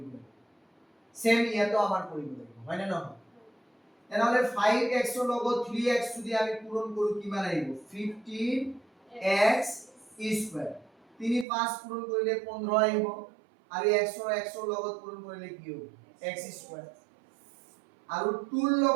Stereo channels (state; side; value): drops out; left; at 11.5 s